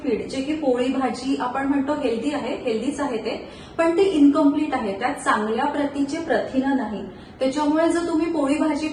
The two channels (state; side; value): identical; both; correlation 1.00